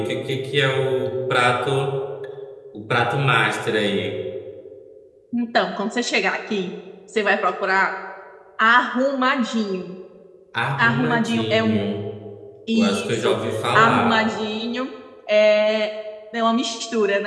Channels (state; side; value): identical; both; correlation 1.00